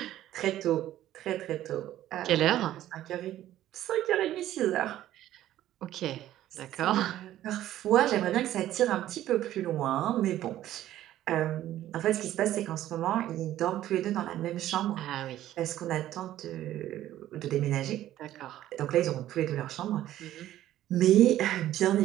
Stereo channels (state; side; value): quieter; left; 13.2 dB